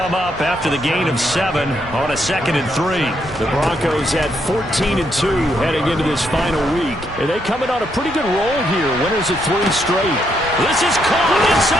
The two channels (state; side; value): normal; both; correlation 0.76